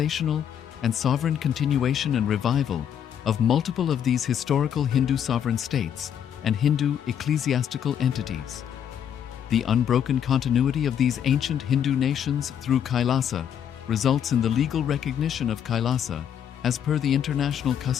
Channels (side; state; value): right; quieter; 9.0 dB